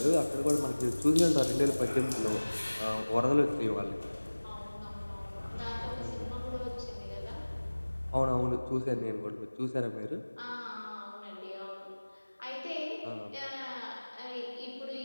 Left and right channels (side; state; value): both; inverted; correlation -1.00